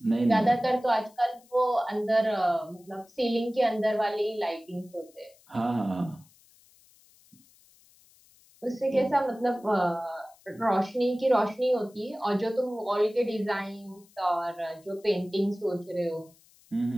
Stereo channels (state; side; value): noise; left; hiss, 29 dB below the sound